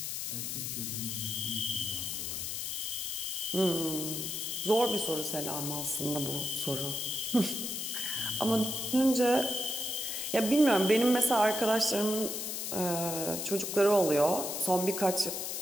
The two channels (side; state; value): left; noise; hiss, 3 dB below the sound